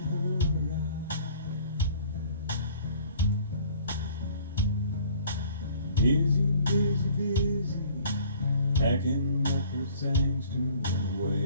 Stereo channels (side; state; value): both; inverted; correlation -0.53